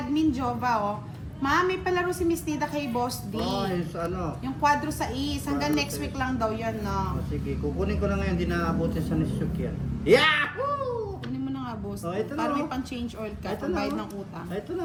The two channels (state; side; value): identical; both; correlation 1.00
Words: Jova, oh. Ma, may palaro si Miss Nida kay Boss D. Oh, yung sa ano. Yung quadro sa is. Hanggang Quadro next sa week lang daw yan, no? Oh, sige, kukunin ko na ngayon. Di naabutin sa Nisuk yan. Yahoo! Kunin mo na nga, Boss. Oh, ito na, Para oh. may pang-change oil ka. Ito na, Pambayad oh. ng utang. Ito na,